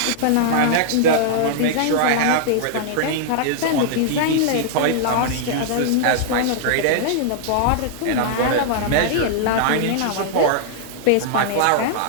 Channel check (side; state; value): both; different; correlation -0.01